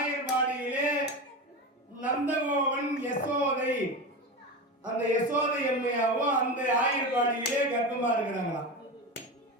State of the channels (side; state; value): both; normal; correlation 0.22